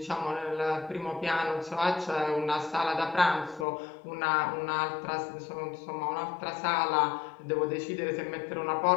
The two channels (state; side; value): drops out; right; at 3.7 s